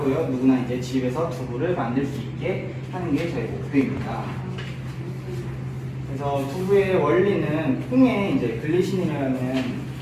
누구나 이제 집에서 두부를 만들 수 있게 하는 게 저희 목표입니다. 그래서 두부의 원리는 콩에 이제 글리신이라는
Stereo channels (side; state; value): both; identical; correlation 1.00